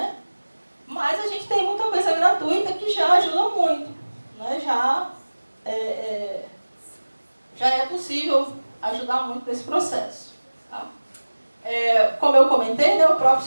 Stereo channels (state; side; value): inverted; both; correlation -1.00